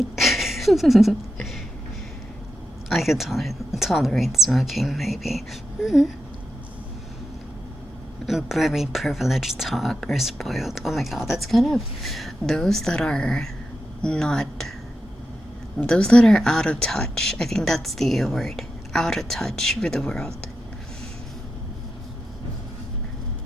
I could tolerate smoking, maybe. Very privileged talk or spoiled. Oh my god, that's kind of those that are not. Those that are out of touch. I think that's the word. Out of touch with the world.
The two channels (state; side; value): normal; both; correlation 0.88